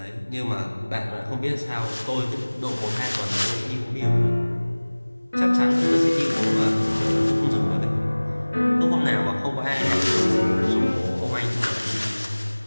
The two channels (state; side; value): inverted; both; correlation -1.00